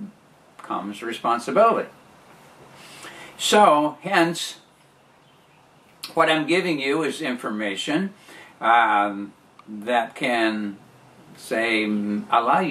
comes responsibility. So hence, what I'm giving you is information that can, say, allow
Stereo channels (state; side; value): identical; both; correlation 1.00